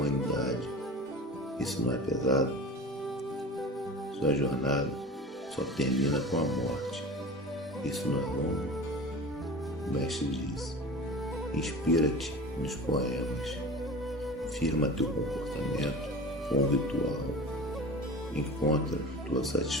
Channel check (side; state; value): both; normal; correlation 0.35